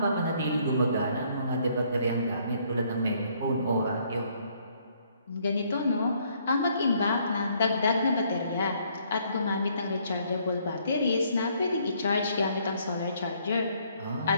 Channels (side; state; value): both; inverted; correlation -0.67